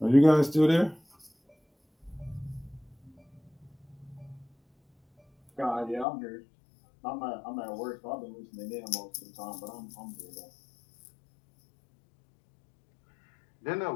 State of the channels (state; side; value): drops out; right; at 6.1 s